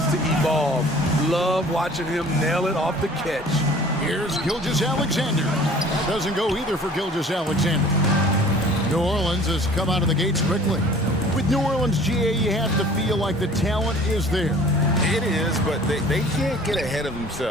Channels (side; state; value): both; normal; correlation 0.48